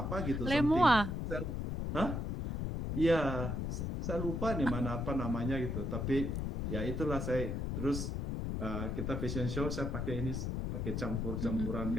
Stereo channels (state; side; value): noise; left; rumble, 2 dB below the sound